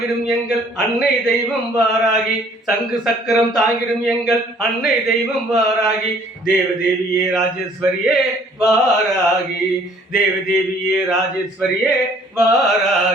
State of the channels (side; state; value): both; normal; correlation 0.58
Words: எங்கள் அன்னை தெய்வம் வாராகி. சங்கு சக்கரம் தாங்கிடும் எங்கள் அன்னை தெய்வம் வாராகி. தேவதேவியே ராஜேஸ்வரியே வாராகி. தேவதேவியே ராஜேஸ்வரியே